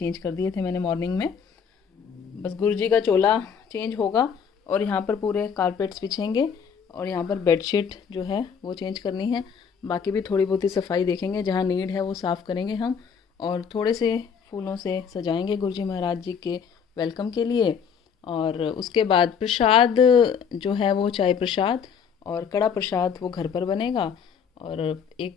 कर दिए थे मैंने मॉर्निंग में। बस गुरुजी का चोला चेंज होगा और यहाँ पर पूरे कारपेट्स बिछेंगे और यहाँ पर बेडशीट जो है वो चेंज करनी है। बाकी भी थोड़ी बहुत ही सफाई देखेंगे, जहाँ नीड है वो साफ़ करेंगे हम। और थोड़े से फूलों से सजाएंगे गुरुजी महाराज जी के वेलकम के लिए। और उसके बाद प्रसाद जो है वो चाय प्रसाद और कड़ा प्रसाद वो घर पर बनेगा। और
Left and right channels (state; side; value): quieter; right; 6.8 dB